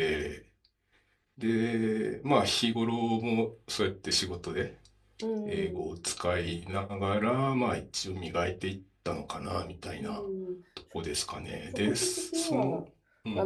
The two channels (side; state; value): both; identical; correlation 1.00